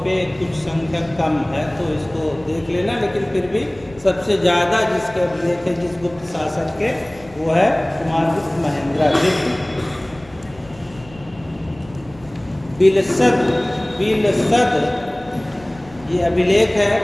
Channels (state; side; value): noise; left; rumble, 23 dB below the sound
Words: कुछ संख्या कम है, तो इसको देख लेना। लेकिन फिर भी सबसे ज़्यादा जिसके अभिलेख है जिस गुप्त शासक के, वो है कुमारगुप्त महेंद्रादित्य। बिलसद ये अभिलेख है